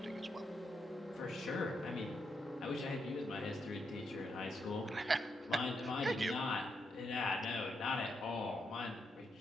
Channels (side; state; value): both; normal; correlation 0.81